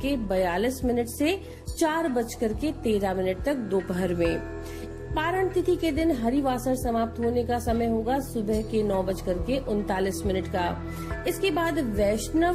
से 4:13 तक दोपहर में। पारण तिथि के दिन हरिवासर समाप्त होने का समय होगा सुबह के 9:39 का। इसके बाद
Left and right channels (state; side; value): identical; both; correlation 1.00